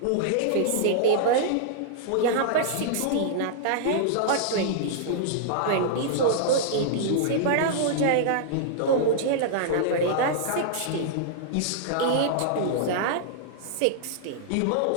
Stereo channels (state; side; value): different; both; correlation -0.01